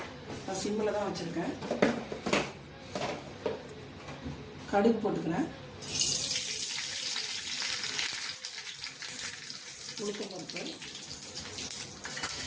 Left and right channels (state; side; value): identical; both; correlation 1.00